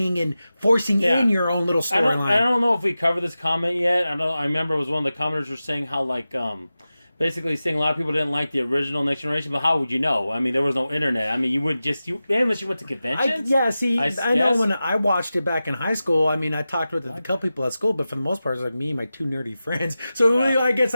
and forcing in your own little storyline. I don't know if we covered this comment yet. I remember it was one of the commenters were saying how basically saying a lot of people didn't like the original Next Generation, but how would you know? I mean, there was no internet. I mean, you wouldn't unless you went to conventions. I know when I watched it back in high school, I mean, I talked with a couple people at school, but for the most part, it was like me and my two nerdy friends. So really, I guess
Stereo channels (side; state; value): both; inverted; correlation -0.94